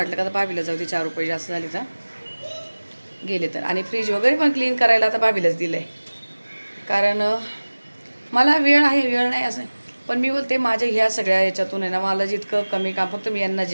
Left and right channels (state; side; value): inverted; both; correlation -1.00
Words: का आता भाभीला जाऊ दे, 4 रुपये जास्त झाले तर गेले तर. आणि फ्रीज वगैरे पण क्लीन करायला आता भाभीलाच दिलं आहे. कारण मला वेळ नाही असं, पण मी बोलते माझ्या ह्या सगळ्या याच्यातून आहे ना, मला जितकं कमी काम, फक्त मी यांना